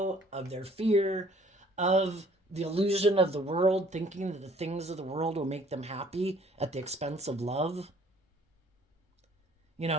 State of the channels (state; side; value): normal; both; correlation 0.57